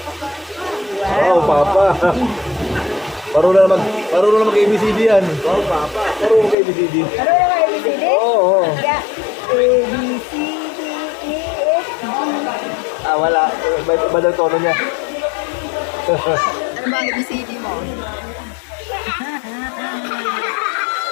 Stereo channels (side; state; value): right; drops out; at 6.6 s